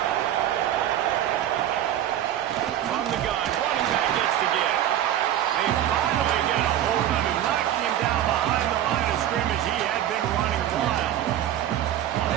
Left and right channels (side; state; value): left; quieter; 11.7 dB